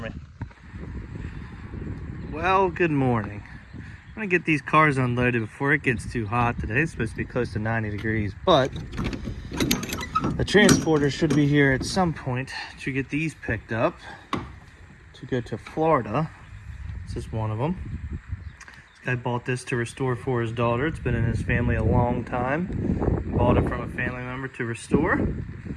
me. Well, good morning. I'm gonna get these cars unloaded before it gets too hot today. It's supposed to be close to 90 degrees, but the transporter should be here at some point to get these picked up to go to Florida. This is one of them. This guy bought this to restore for his daughter. It's been in his family a long time. Bought it from a family member to restore.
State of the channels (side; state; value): both; identical; correlation 1.00